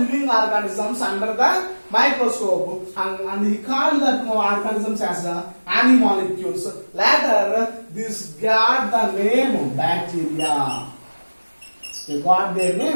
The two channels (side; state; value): both; inverted; correlation -1.00